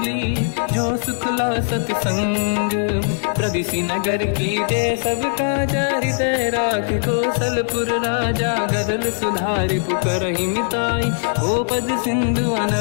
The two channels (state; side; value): silent; right; digital silence